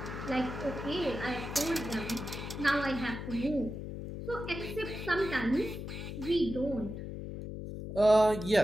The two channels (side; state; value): left; noise; hum, 7 dB below the sound